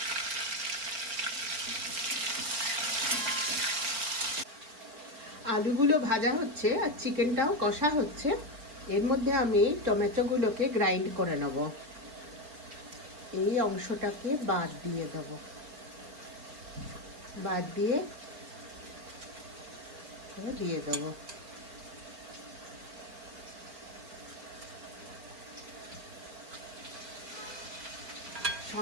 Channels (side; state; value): left; late; 4.4 ms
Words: আলুগুলো ভাজা হচ্ছে আর চিকেনটাও কষা হচ্ছে। এর মধ্যে আমি টমেটোগুলোকে গ্রাইন্ড করে নেব। এই অংশটাকে বাদ দিয়ে দেব, বাদ দিয়ে দিয়ে দেবো।